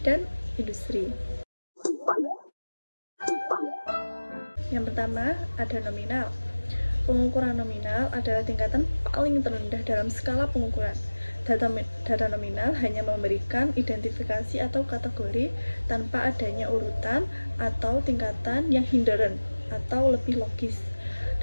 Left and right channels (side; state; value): both; inverted; correlation -1.00